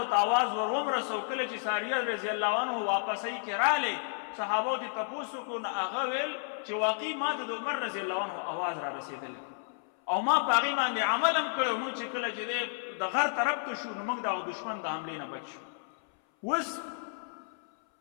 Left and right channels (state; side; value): silent; right; 57 dB below the other